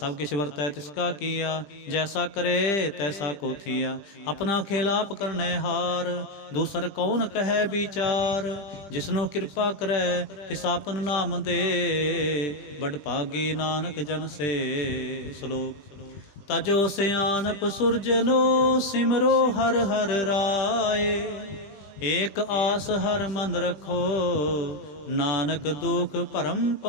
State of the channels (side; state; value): right; late; 20 ms